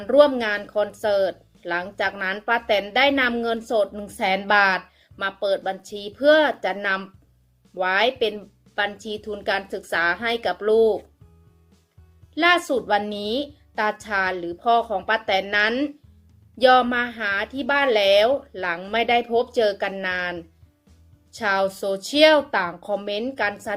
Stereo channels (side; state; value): both; identical; correlation 1.00